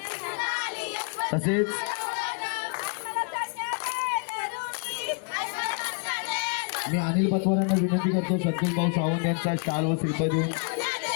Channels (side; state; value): right; quieter; 39.0 dB